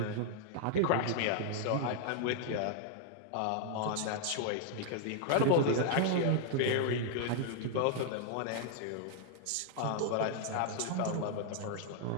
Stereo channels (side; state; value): both; different; correlation -0.01